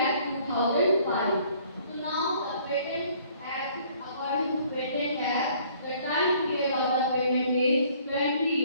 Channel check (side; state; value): both; inverted; correlation -0.59